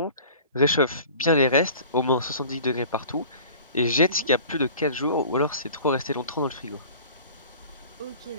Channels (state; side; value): inverted; both; correlation -0.44